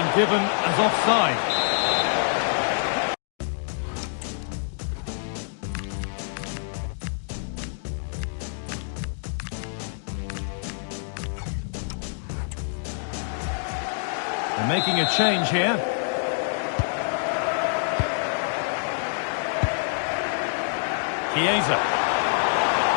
given as offside. They're making a change here. Chiesa.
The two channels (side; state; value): right; silent; digital silence